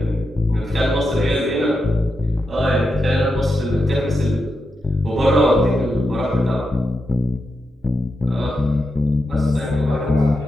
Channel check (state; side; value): normal; both; correlation 0.87